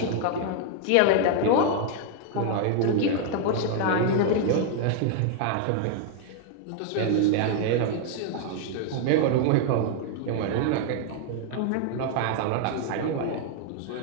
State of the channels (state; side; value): different; both; correlation 0.00